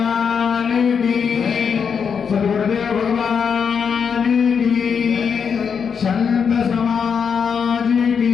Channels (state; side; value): quieter; right; 6.6 dB